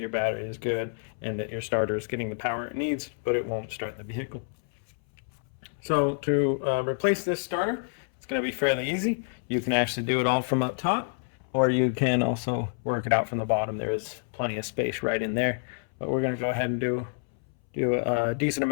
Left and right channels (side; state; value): right; silent; 59 dB below the other